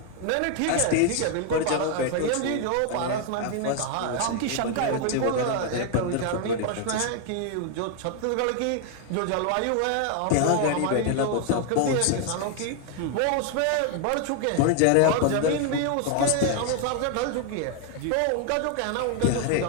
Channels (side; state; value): both; different; correlation 0.00